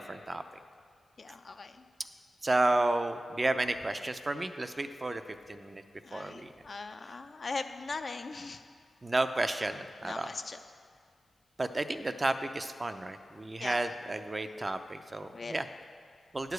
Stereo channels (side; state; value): both; normal; correlation 0.96